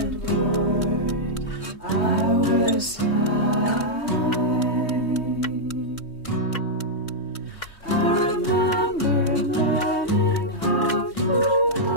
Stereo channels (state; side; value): late; right; 3.2 ms